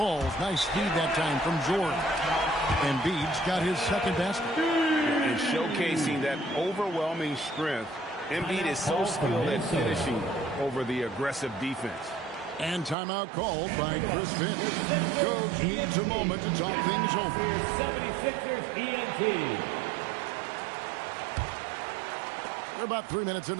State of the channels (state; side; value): drops out; left; at 13.0 s